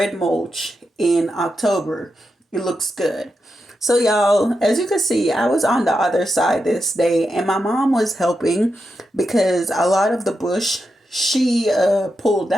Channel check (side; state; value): both; normal; correlation 0.87